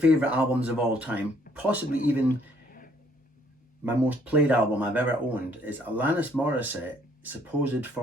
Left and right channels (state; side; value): normal; both; correlation 0.64